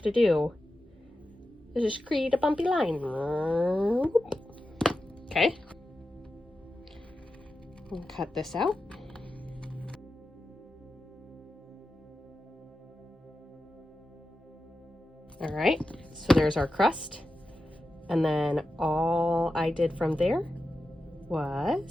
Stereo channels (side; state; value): both; normal; correlation 0.91